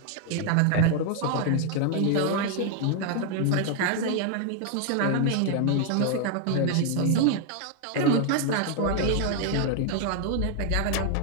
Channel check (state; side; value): different; both; correlation 0.00